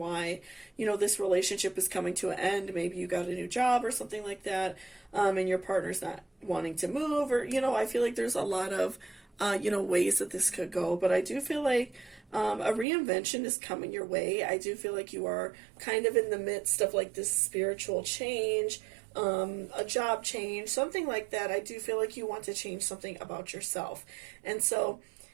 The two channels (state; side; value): drops out; left; at 12.9 s